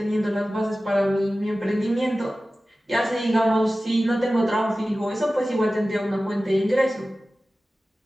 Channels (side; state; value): both; normal; correlation 0.96